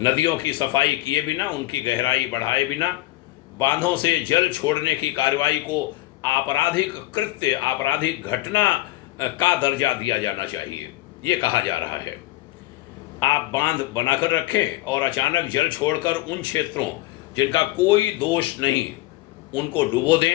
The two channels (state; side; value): quieter; right; 17.0 dB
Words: की सफाई किए बिना, उनकी गहराई बढ़ाए बिना, बांधों से जल छोड़ने की कार्रवाई को आपराधिक कृत्य, आपराधिक घटना का दर्जा दिया जाना चाहिए, ये कहा जा रहा है। आप बांध बनाकर रखें और अचानक जल छोड़कर उन क्षेत्रों जिनका कोई दोष नहीं, उनको डुबो